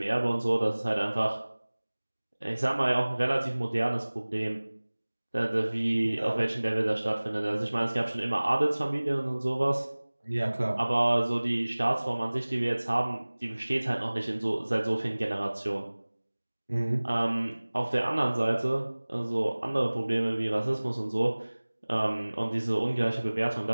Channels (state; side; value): inverted; both; correlation -1.00